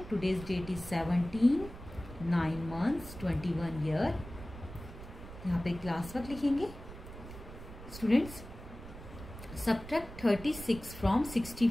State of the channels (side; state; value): right; noise; rumble, 13 dB below the sound